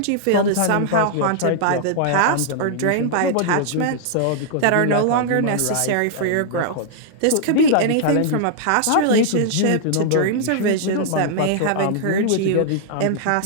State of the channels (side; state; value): both; different; correlation -0.01